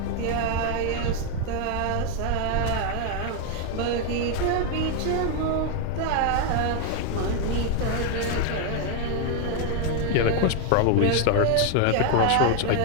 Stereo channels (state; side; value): different; both; correlation 0.01